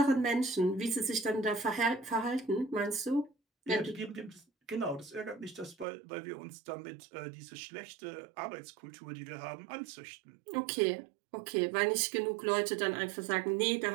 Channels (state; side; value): drops out; left; at 5.9 s